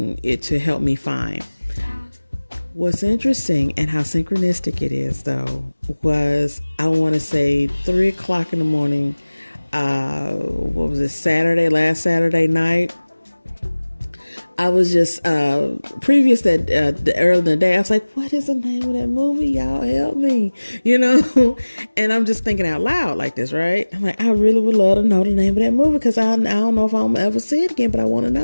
it to help me find. What's interesting and how synchronistic it is, though, was, I want to say 3 o'clock in the morning. What was it? Last Saturday night. I was just, previous that, early in the day, I was like, what is the name of that movie? Y'all help me, and I'm just thinking out loud like this, right? I'm like, I really would love to know the name of that movie, because I don't know if I'm ever see it again, but I want to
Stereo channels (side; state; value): both; inverted; correlation -1.00